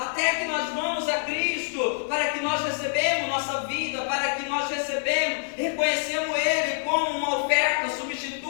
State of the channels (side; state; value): right; silent; digital silence